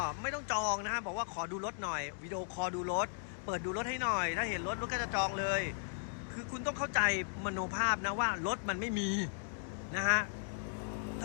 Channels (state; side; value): silent; right; digital silence